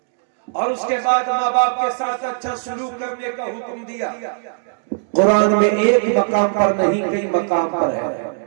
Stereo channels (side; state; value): left; silent; digital silence